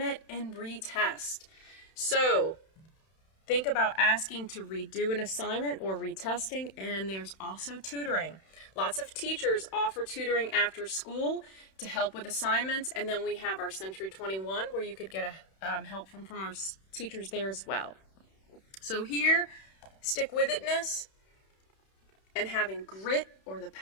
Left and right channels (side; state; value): right; late; 31 ms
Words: it and retest? So think about asking to redo an assignment or retesting, and there's also tutoring. Lots of teachers offer tutoring after school to help with assignments, and then we have our Century 21 where you could get help from our teachers there as well. So here, stick-with-itness and having grit, or the